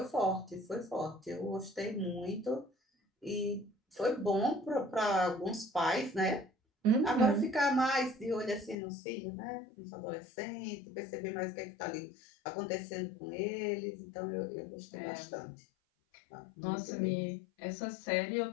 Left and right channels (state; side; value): drops out; right; at 8.8 s